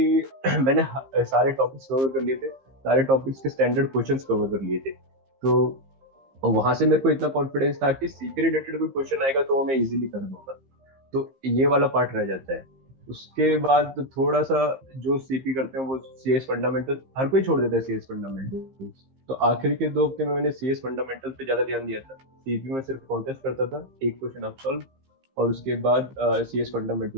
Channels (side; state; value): left; late; 15 ms